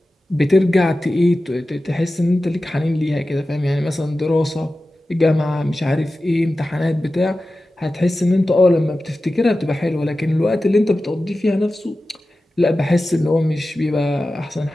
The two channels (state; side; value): normal; both; correlation 0.94